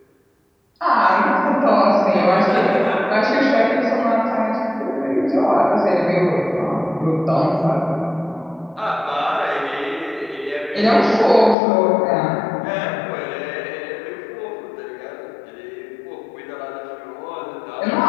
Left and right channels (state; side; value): drops out; right; at 11.6 s